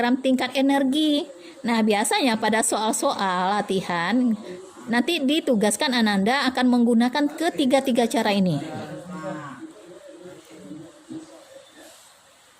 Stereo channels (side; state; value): both; identical; correlation 1.00